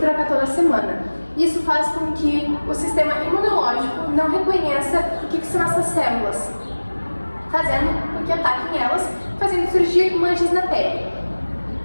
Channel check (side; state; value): both; inverted; correlation -1.00